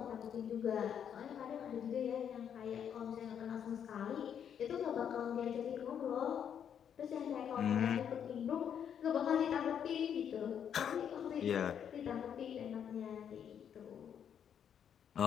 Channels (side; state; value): right; quieter; 8.5 dB